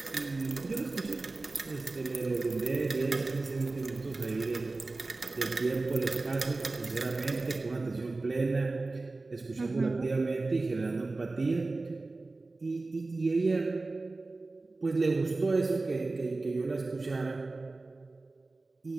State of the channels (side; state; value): left; quieter; 3.4 dB